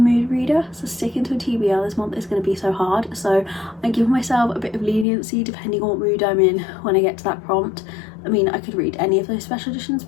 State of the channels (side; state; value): right; drops out; at 5.1 s